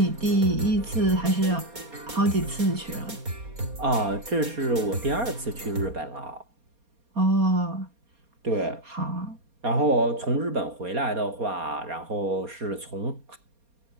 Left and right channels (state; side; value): late; left; 4.3 ms